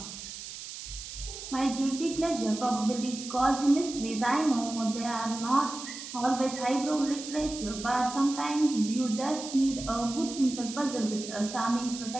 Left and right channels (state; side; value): noise; right; hiss, 10 dB below the sound